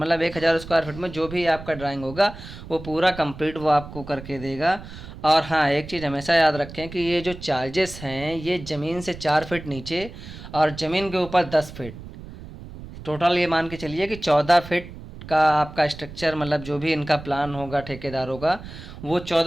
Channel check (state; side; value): noise; right; rumble, 14 dB below the sound